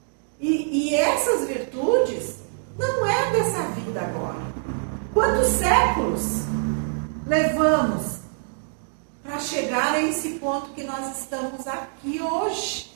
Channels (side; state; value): left; silent; digital silence